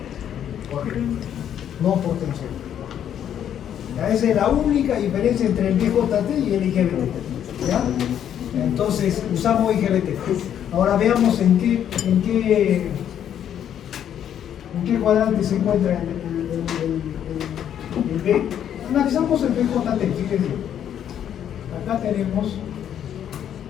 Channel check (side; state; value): right; quieter; 9.7 dB